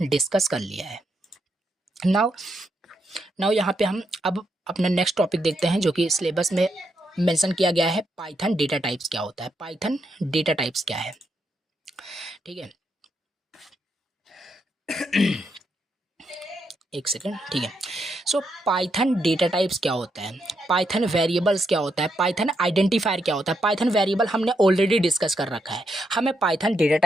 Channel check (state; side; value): normal; both; correlation 0.80